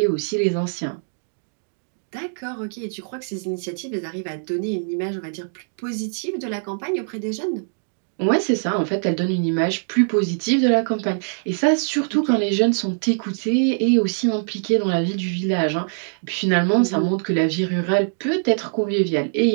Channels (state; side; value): silent; left; digital silence